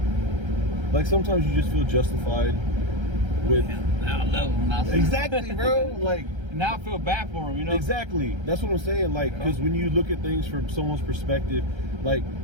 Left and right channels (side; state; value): left; late; 1.3 ms